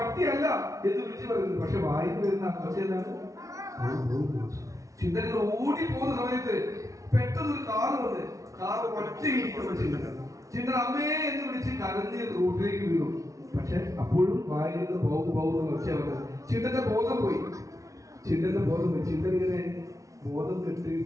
എന്ന് വിളിച്ചു പറയുന്നു. പക്ഷെ വായിന്ന് വരുന്ന ഒച്ച എന്താണ്? ചിന്തകൾ ഓടി പോകുന്ന സമയത്ത് പെട്ടെന്ന് ഒരു കാറ് വന്ന് കാറ് ഒറ്റ ഇടിക്കുമ്പോ ചിന്തൻ അമ്മേ എന്ന് വിളിച്ച് കരഞ്ഞ് റോഡിലേക്ക് വീണു. പക്ഷെ അപ്പോഴും വായിൽ നിന്ന് പോകുന്ന ഒച്ച വന്നത്. ചിന്തന്റെ ബോധം പോയി. ചിന്തൻ ഇങ്ങനെ ബോധം കെട്ട്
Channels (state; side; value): late; left; 0.16 ms